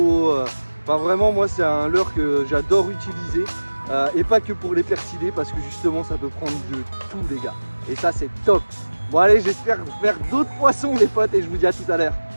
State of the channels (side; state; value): both; inverted; correlation -1.00